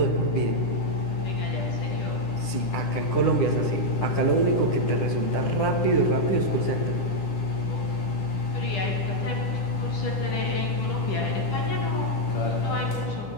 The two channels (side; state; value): right; late; 10 ms